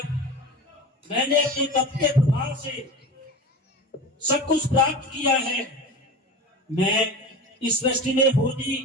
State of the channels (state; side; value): normal; both; correlation 0.31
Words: मैंने अपने तप के प्रभाव से सब कुछ प्राप्त किया है। मैं इस सृष्टि में होनी